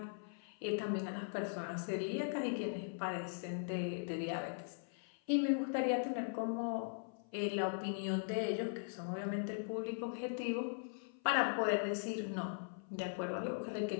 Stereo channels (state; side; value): silent; right; 51 dB below the other